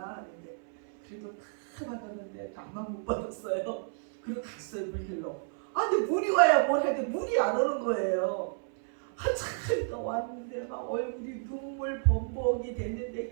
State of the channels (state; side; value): silent; left; 57 dB below the other